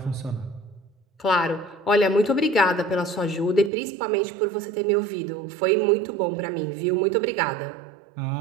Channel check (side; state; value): left; drops out; at 3.7 s